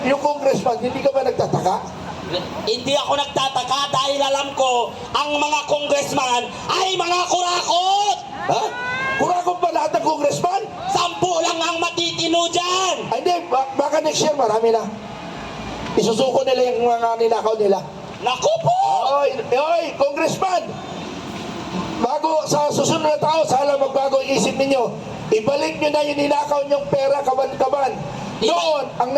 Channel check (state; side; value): identical; both; correlation 1.00